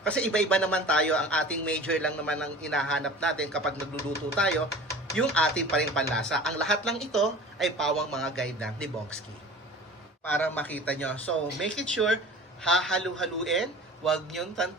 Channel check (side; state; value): both; normal; correlation 0.40